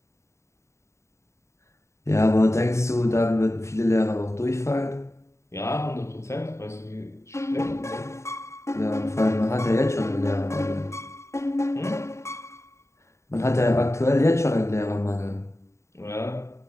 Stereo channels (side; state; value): right; late; 0.14 ms